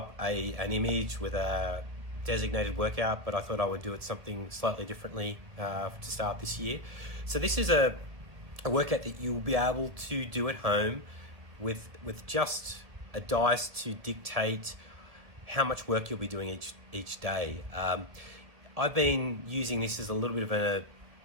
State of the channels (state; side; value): late; left; 1.7 ms